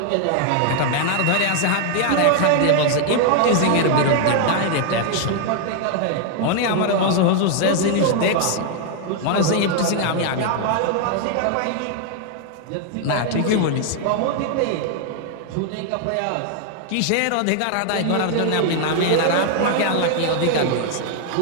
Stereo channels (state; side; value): different; both; correlation 0.00